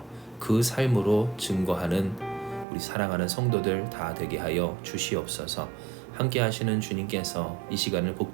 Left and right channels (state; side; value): drops out; left; at 2.7 s